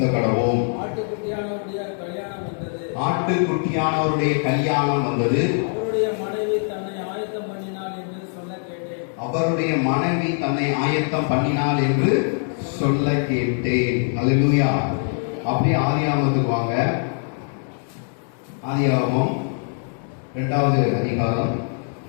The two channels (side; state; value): right; silent; 57 dB below the other